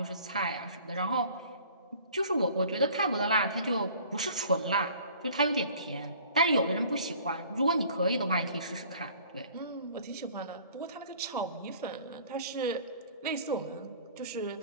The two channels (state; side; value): inverted; both; correlation -0.50